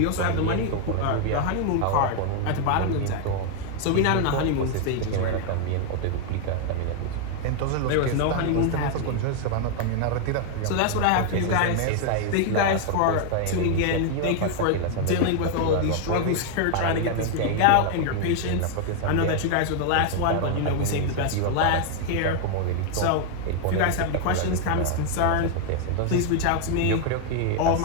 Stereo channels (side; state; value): both; different; correlation 0.00